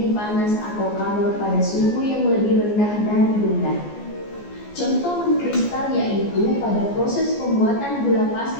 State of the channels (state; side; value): late; right; 14 ms